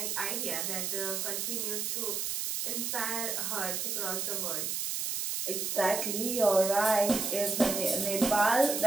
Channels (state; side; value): noise; right; hiss, 1 dB below the sound